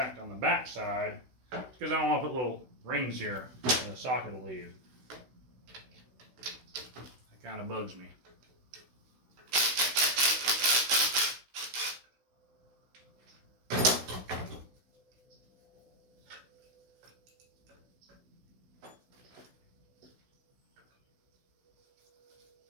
on the back side because I don't want to put little rings here in the socket will leave. That kind of bugs me.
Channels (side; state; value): left; late; 16 ms